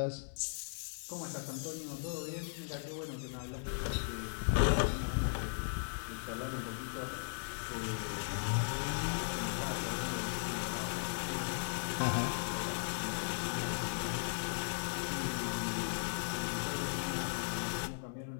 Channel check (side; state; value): right; silent; digital silence